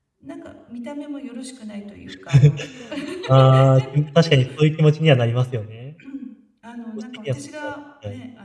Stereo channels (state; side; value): identical; both; correlation 1.00